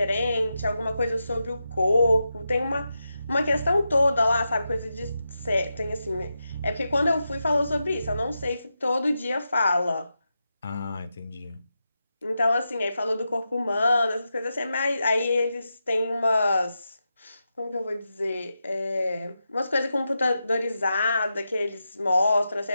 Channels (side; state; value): both; inverted; correlation -0.89